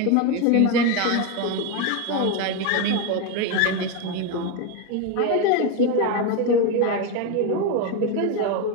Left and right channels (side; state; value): both; different; correlation 0.03